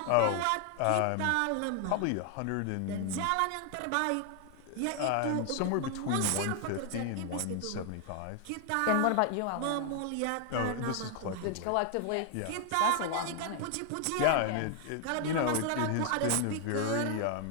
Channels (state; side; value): different; both; correlation 0.00